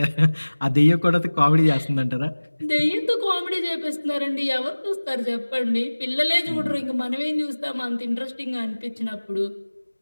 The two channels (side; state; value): both; inverted; correlation -1.00